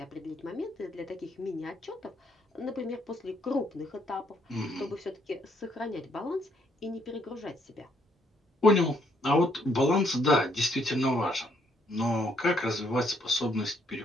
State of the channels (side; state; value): both; normal; correlation 0.71